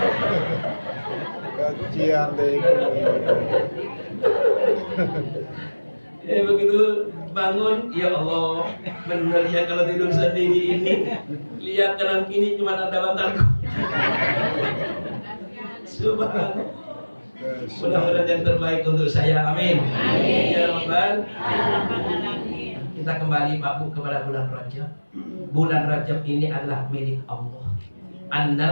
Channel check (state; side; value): inverted; both; correlation -1.00